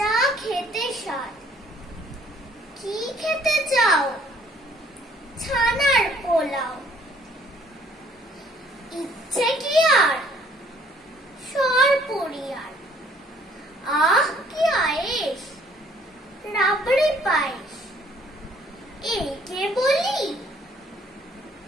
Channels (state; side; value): normal; both; correlation 0.61